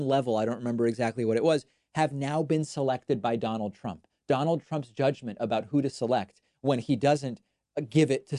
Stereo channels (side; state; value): both; identical; correlation 1.00